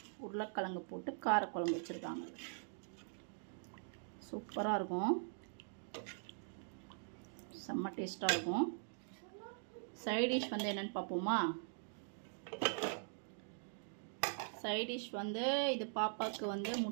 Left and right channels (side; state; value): left; silent; digital silence